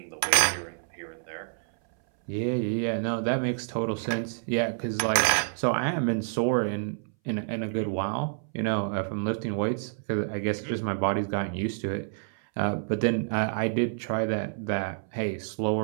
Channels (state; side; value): silent; left; 59 dB below the other